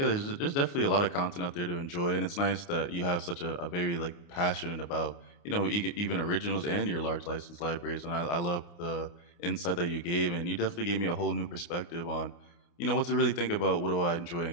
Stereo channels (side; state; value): right; late; 29 ms